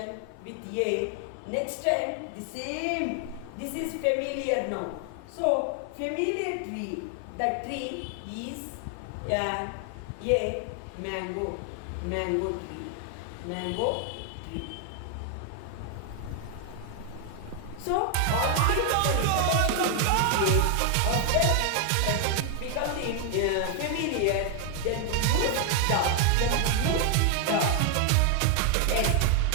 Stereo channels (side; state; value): both; different; correlation 0.00